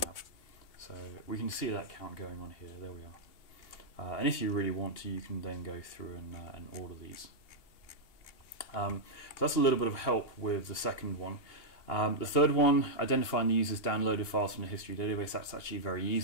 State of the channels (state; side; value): late; right; 2.8 ms